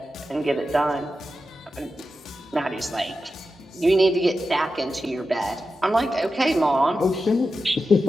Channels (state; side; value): normal; both; correlation 0.91